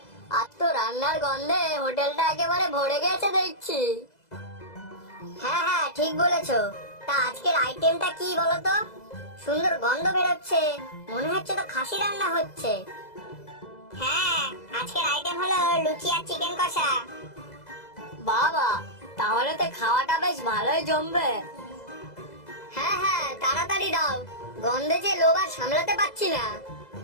আজ তো রান্নার গন্ধে হোটেলটা একেবারে ভরে গেছে দেখছি। হ্যাঁ হ্যাঁ, ঠিক বলেছো। তা আজকের আইটেমটা কি বলো তো? সুন্দর গন্ধ বেরোচ্ছে, মনে হচ্ছে তো খাসি রান্না হচ্ছে। হ্যাঁ, আজকের আইটেম হলো লুচি আর চিকেন কষা। বাবা, তাহলে তো খাওয়াটা বেশ ভালোই জমবে। হ্যাঁ হ্যাঁ, তাড়াতাড়ি দাও, গন্ধে যে লোভ আর সামলাতে পারছি না।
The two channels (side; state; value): right; late; 2.0 ms